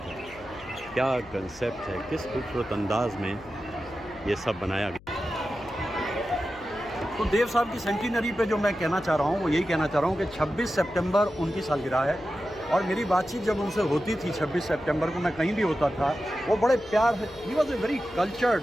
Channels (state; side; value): noise; left; hum, 22 dB below the sound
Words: है, क्या कंसेप्ट है, किस खूबसूरत अंदाज में ये सब बनाया गया। तो देव साहब की सेंटिनरी पे जो मैं कहना चाह रहा हूँ वो यही कहना चाह रहा हूँ कि 26 सितंबर उनकी सालगिरह है, और मेरी बातचीत जब उनसे होती थी 26 सितंबर को, मैं कहीं भी होता था, वो बड़े प्यार से, he was a very cultured